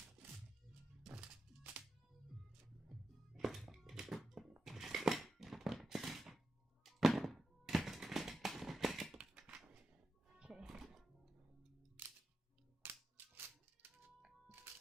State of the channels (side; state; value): both; normal; correlation 0.89